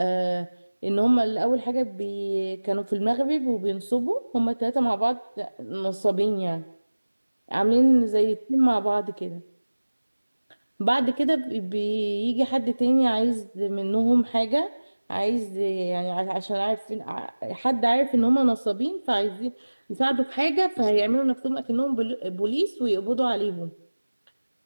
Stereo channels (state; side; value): inverted; both; correlation -1.00